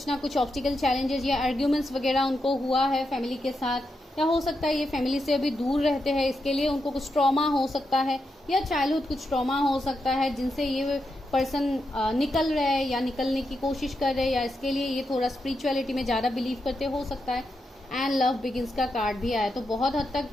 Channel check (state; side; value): normal; both; correlation 0.85